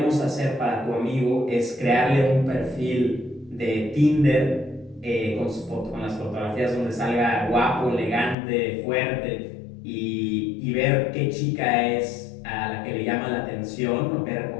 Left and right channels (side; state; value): right; drops out; at 8.3 s